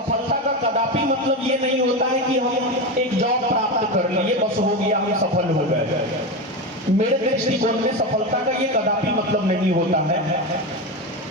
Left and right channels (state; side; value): normal; both; correlation 0.18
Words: का कदापि मतलब ये नहीं होता है कि हम एक जॉब प्राप्त कर लिए बस हो गया, हम सफल हो गए। मेरे दृष्टिकोण में सफलता का ये कदापि मतलब नहीं होता है।